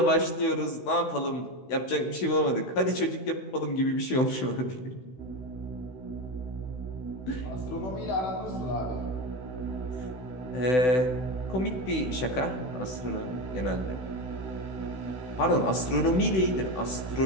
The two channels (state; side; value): late; right; 16 ms